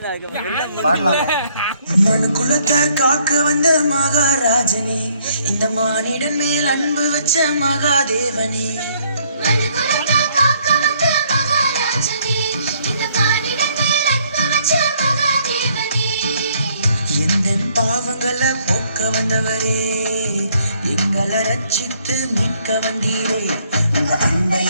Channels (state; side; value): inverted; both; correlation -0.66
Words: பாடலாம். மனுக்குலத்தை காக்க வந்த மகாராஜனே, இந்த மானிடன் மேல் அன்பு வச்ச மகாதேவனே. எந்த பாவங்களை போக்க வந்தவரே, எங்களை ரட்சித்து மீட்க வந்தீரே. உங்க அன்பை